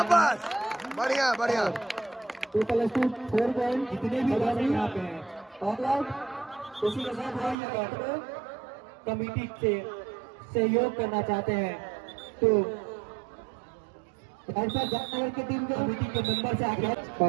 बढ़िया बढ़िया 2+2 4 पॉइंट जितने भी खिलाड़ी यहाँ पे हैं ऑल आउट उसी के साथ वो ये बैठकर कमेटी से सहयोग करना चाहते हैं तो राजनगर की टीम के कमेटी के मेंबर से आगे और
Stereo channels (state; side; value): drops out; left; at 7.6 s